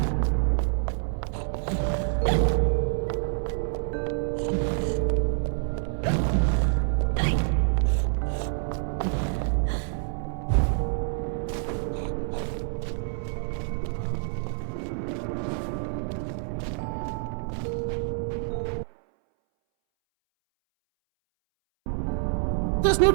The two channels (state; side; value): silent; left; 60 dB below the other